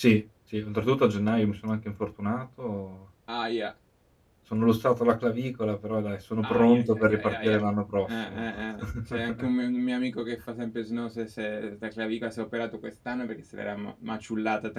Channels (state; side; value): identical; both; correlation 1.00